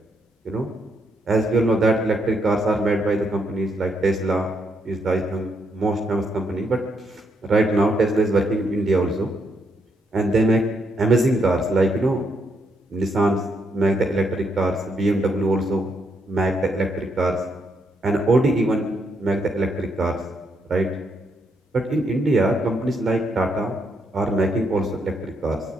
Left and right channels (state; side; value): normal; both; correlation 0.76